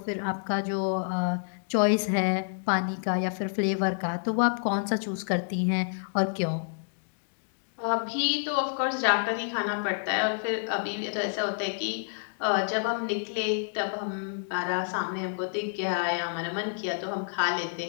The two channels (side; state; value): right; silent; digital silence